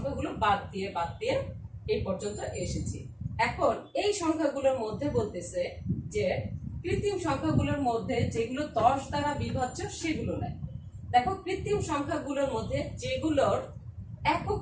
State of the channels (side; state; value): both; identical; correlation 1.00